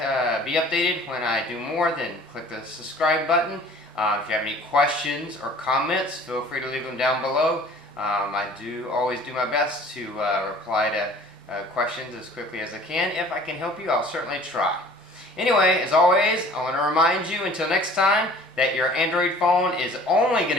be updated when I do more, then click the subscribe button. If you have any questions or comments, feel free to leave them down below. I do always do my best to reply to questions as quickly as I can. If I can help you, I'll certainly try. Anyway, as always, I want to remind you until next time that your Android phone is only going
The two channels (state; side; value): normal; both; correlation 0.49